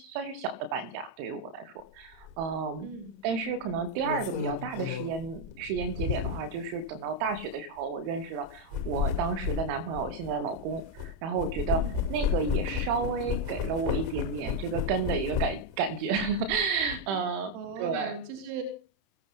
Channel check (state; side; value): late; left; 31 ms